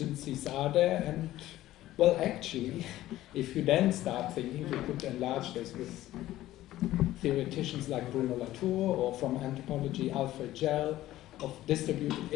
are there? And, well, actually, if you then start thinking, you could enlarge this with theoreticians like Bruno Latour, or from anthropology, Alfred Gell, of distributed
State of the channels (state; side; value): quieter; right; 14.9 dB